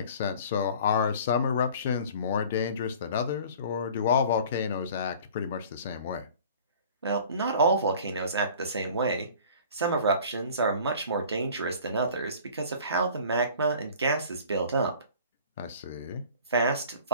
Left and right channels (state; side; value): inverted; both; correlation -0.46